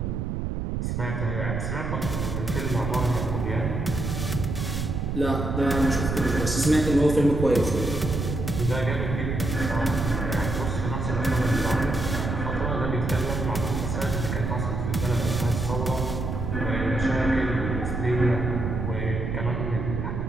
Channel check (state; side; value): noise; right; rumble, 2 dB below the sound